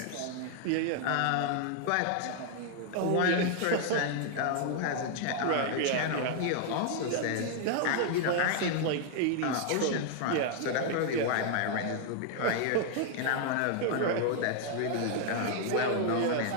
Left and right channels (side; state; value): both; different; correlation 0.00